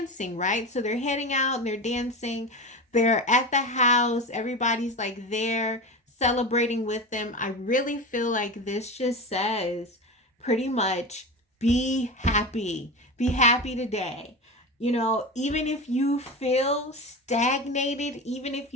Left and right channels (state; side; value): normal; both; correlation 0.25